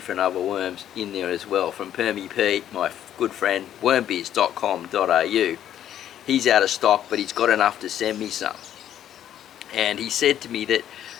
other worms in there as well. From Permy Pete, my good friend, wormbiz.com.au. He's out of stock, but he's got enough to send me some. And he said to me that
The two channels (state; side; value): quieter; right; 10.9 dB